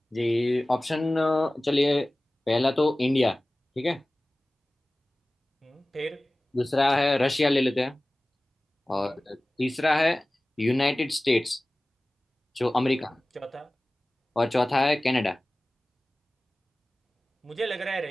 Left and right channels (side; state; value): both; normal; correlation 0.97